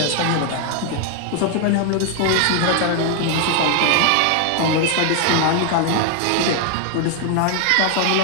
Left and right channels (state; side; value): different; both; correlation 0.00